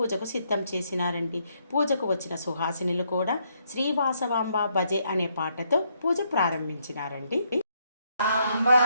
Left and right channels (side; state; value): both; inverted; correlation -0.74